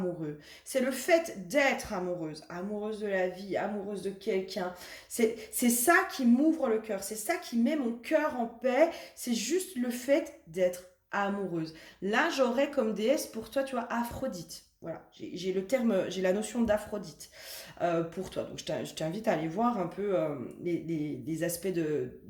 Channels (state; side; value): identical; both; correlation 1.00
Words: C'est le fait d'être amoureuse, amoureuse de la vie, amoureuse de quelqu'un. C'est ça qui m'ouvre le cœur. C'est ça qui met mon cœur en paix. C'est juste le fait d'être amoureuse. Là, j'aurais comme déesse pour toi, tu vois, Aphrodite. Voilà, j'ai le terme, j'ai la notion d'Aphrodite pour toi. Donc, je t'invite à aller voir un peu les aspects